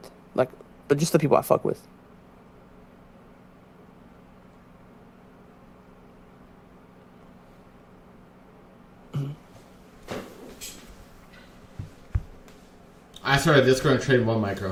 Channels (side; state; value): both; identical; correlation 1.00